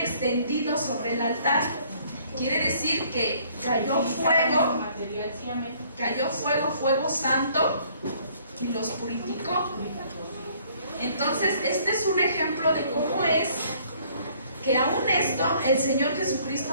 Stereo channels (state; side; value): inverted; both; correlation -0.60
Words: sobre el altar. Quiere decir que cayó fuego santo y los purificó. Entonces, este es un ejemplo de cómo es que aún esto el Señor